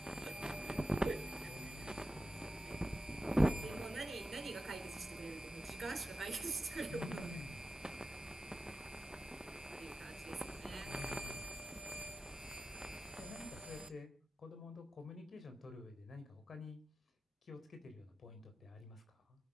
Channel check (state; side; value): normal; both; correlation 0.93